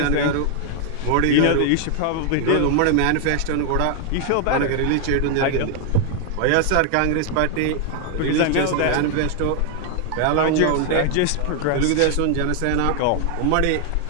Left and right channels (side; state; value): both; different; correlation 0.00